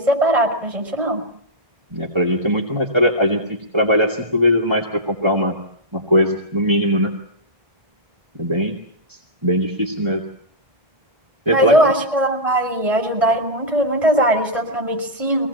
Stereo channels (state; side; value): late; left; 1.6 ms